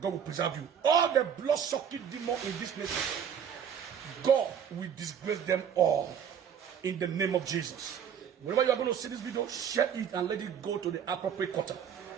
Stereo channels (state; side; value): quieter; left; 8.2 dB